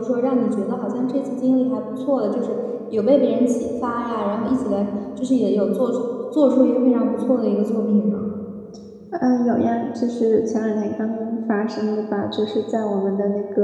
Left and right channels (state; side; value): identical; both; correlation 1.00